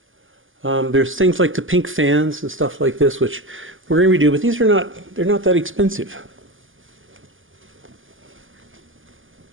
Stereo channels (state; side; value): late; left; 0.58 ms